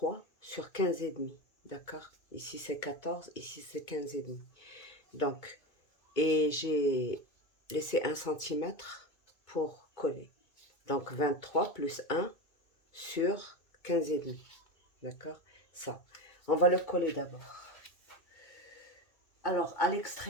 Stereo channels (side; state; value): right; late; 2.2 ms